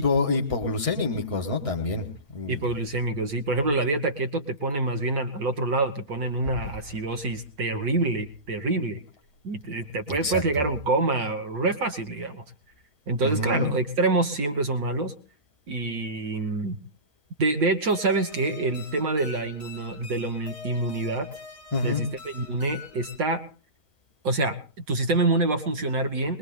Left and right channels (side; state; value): left; late; 6.9 ms